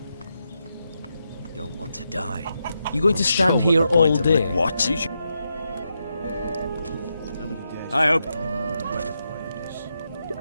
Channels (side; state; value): both; inverted; correlation -0.85